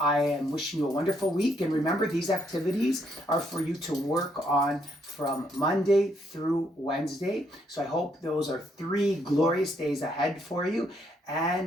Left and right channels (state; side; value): normal; both; correlation 0.73